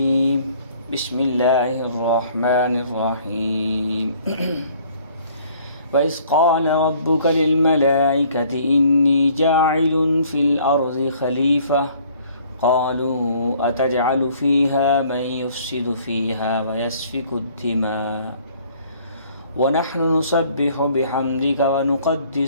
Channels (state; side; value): inverted; both; correlation -0.58